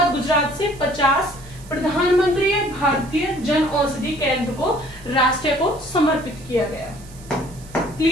गुजरात से 50 प्रधानमंत्री भारतीय जन औषधि केंद्र को राष्ट्र को समर्पित किया गया।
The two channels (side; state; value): right; noise; hiss, 22 dB below the sound